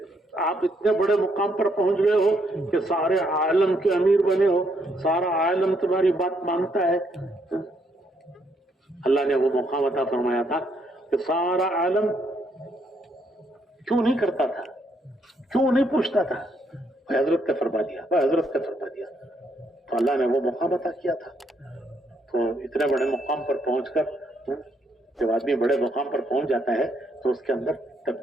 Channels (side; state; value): both; normal; correlation 0.73